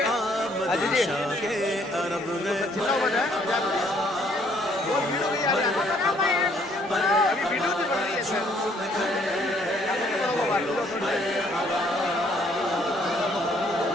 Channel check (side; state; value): both; normal; correlation 0.65